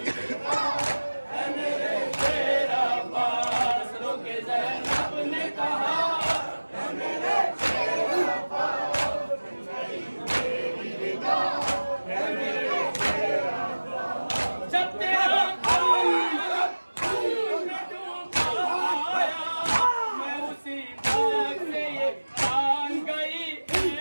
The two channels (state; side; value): inverted; both; correlation -1.00